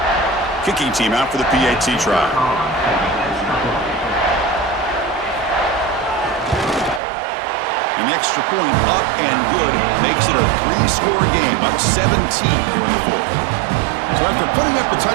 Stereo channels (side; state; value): left; drops out; at 7.0 s